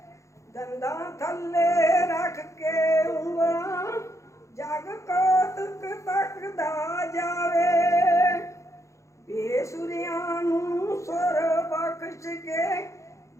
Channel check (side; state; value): right; late; 0.15 ms